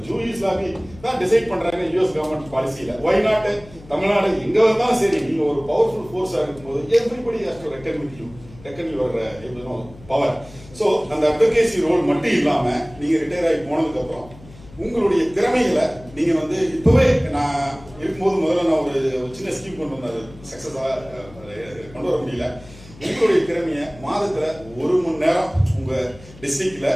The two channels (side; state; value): left; noise; hum, 21 dB below the sound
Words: ஜூரிஸ் லாபி தான் டிசைட் பண்றாங்க US கவர்மெண்ட் பாலிசியில. ஒய் நாட் தமிழ்நாடு எங்க வந்தாலும் சரி, நீங்க ஒரு பவர்ஃபுல் ஃபோர்ஸா இருக்கும்போது everybody has to reckon with you, reckon your power. So அந்த அட்வொகேசி ரோல் மட்டும் இல்லாம நீங்க ரிட்டையர் ஆகி போனதுக்கு அப்புறம் உங்களுடைய திறமைகளை நீங்க வந்து இப்பவே நான் இருக்கும்போது முதல்ல நான் ஒரு சின்ன ஸ்கீம் கொண்டு வந்தாரு, சக்சஸா கொண்டு வர முடியல. உங்களுடைய திறமைய மாதத்துல 1 மணி நேரம் உங்க டிஸ்ட்ரிக்ட்ல